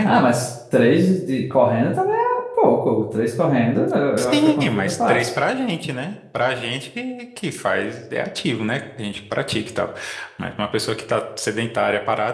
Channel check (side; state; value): both; identical; correlation 1.00